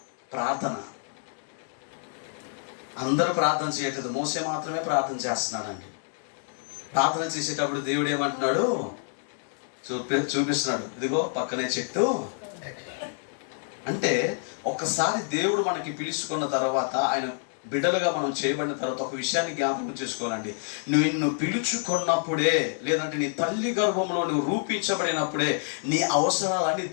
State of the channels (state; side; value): silent; right; digital silence